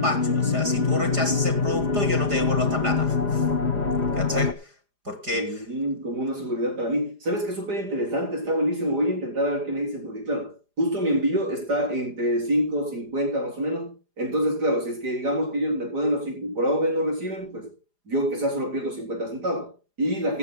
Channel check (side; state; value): left; late; 4.9 ms